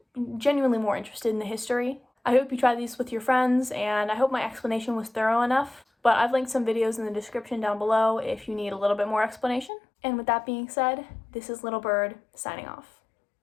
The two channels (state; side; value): drops out; right; at 9.7 s